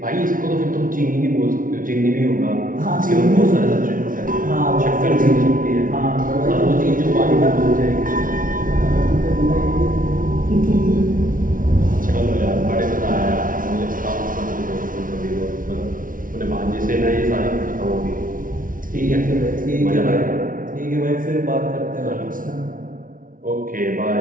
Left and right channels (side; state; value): left; late; 0.39 ms